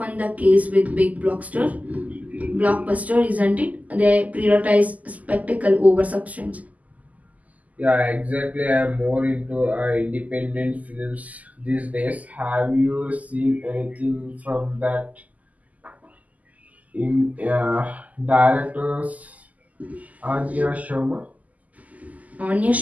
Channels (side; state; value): left; late; 0.076 ms